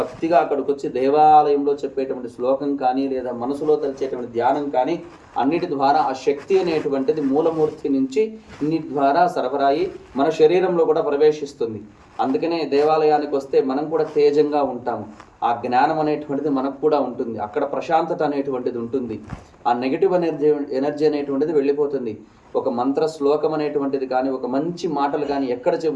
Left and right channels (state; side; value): identical; both; correlation 1.00